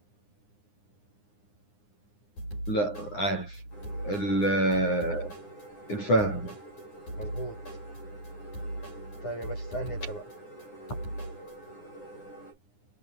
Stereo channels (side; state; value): right; late; 9.7 ms